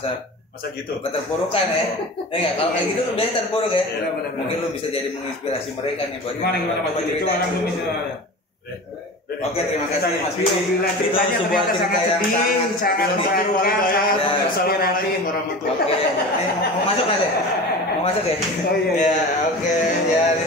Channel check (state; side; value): normal; both; correlation 0.33